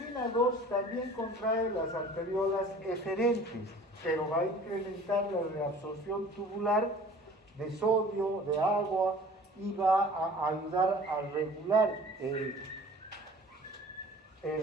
2 también contrae las arteriolas eferentes, pero va a incrementar la reabsorción tubular de sodio, de agua, y va a ayudar a regular el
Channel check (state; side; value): normal; both; correlation 0.47